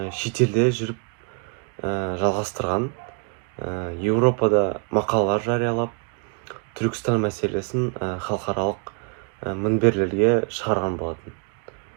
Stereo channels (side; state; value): left; quieter; 35.9 dB